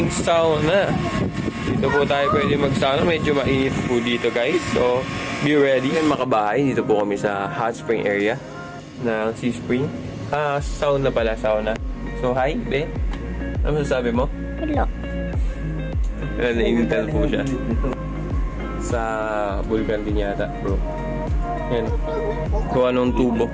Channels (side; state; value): both; identical; correlation 1.00